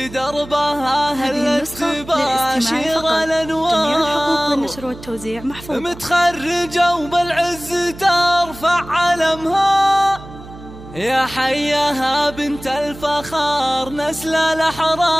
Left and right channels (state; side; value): noise; right; hum, 16 dB below the sound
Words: دربها هلت تباشر الأنوار. جميع الحقوق بالنشر والتوزيع محفوظة. متخرجة وبالعز ترفع علمها يا حياها بنت الفخار نسل